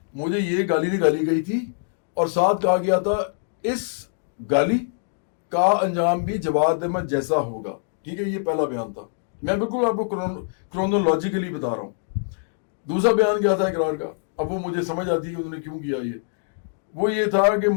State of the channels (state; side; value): silent; right; digital silence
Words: مجھے یہ گالی نکالی گئی تھی، اور ساتھ کہا گیا تھا اس گالی کا انجام بھی جواد احمد جیسا ہوگا. ٹھیک ہے، یہ پہلا بیان تھا. میں بالکل آپ کو کرونالوجیکلی بتا رہا ہوں. دوسرا بیان کیا تھا اقرار کا؟ اب وہ مجھے سمجھ آتی ہے کہ انہوں نے کیوں کیا. وہ یہ تھا کہ